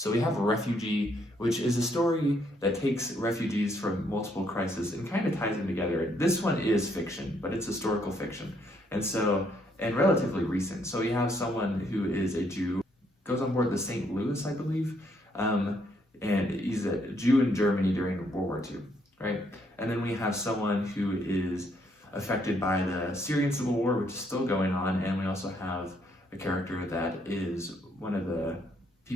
we have Refugee, which is a story that takes refugees from multiple crises and kind of ties them together. This one is fiction, but it's historical fiction. And relatively recent. So you have someone who is a Jew, goes on board the St. Louis, I believe, and he's a Jew in Germany during World War II, right? And then we have someone who is affected by the Syrian Civil War, which is still going on, and we also have a character that is one of the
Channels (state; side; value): normal; both; correlation 0.71